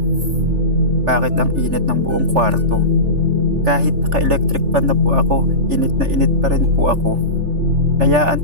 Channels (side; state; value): left; late; 3.4 ms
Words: bakit ang init ng buong kwarto? Kahit naka-electric fan na po ako, init na init pa rin po ako.